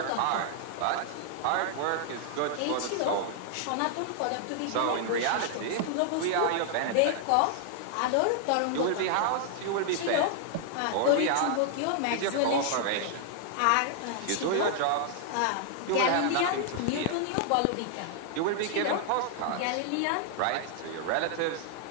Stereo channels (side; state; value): both; different; correlation -0.01